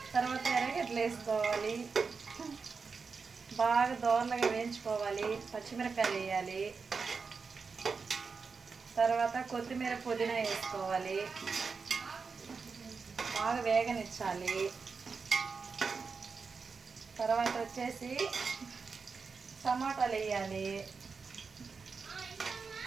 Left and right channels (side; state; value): left; quieter; 5.0 dB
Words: తర్వాత ఎర్రగడ్డలు వేసుకోవాలి. బాగా దోరలుగా వేయించుకోవాలి. పచ్చిమిరపకాయలు వేయాలి. తర్వాత కొత్తిమీర పుదీనా వేసుకోవాలి. బాగా వేగనిచ్చాలి. తర్వాత వచ్చేసి టమాటాలు వేయాలి.